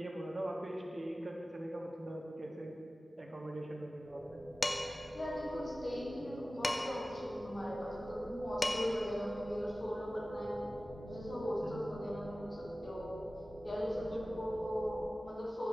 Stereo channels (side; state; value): both; normal; correlation 0.96